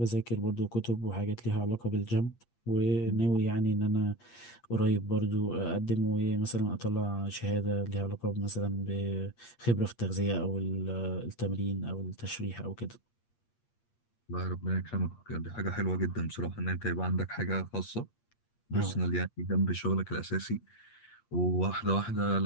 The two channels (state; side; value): late; right; 8.5 ms